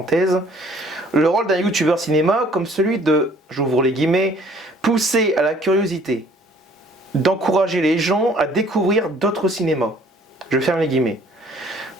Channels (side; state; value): both; normal; correlation 0.57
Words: le rôle d'un youtubeur cinéma comme celui de, j'ouvre les guillemets, pousser à la curiosité, d'encourager les gens à découvrir d'autres cinémas, je ferme les guillemets,